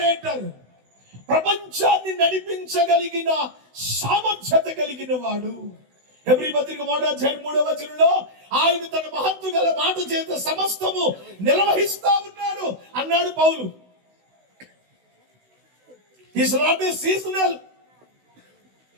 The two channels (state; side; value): late; left; 16 ms